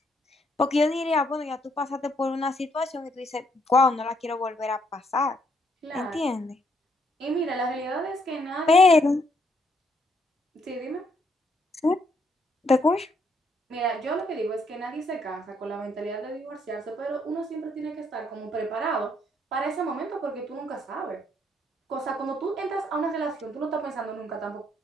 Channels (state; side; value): normal; both; correlation 0.71